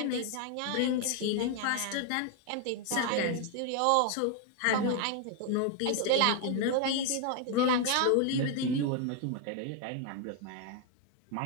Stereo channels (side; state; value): both; different; correlation 0.00